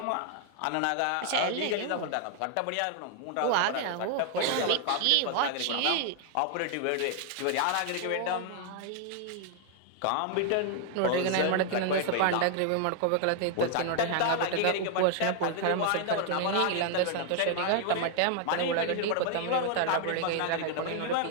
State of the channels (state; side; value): different; both; correlation 0.00